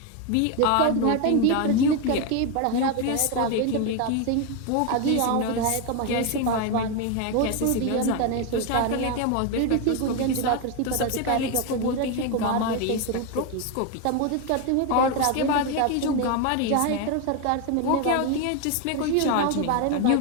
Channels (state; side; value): different; both; correlation 0.02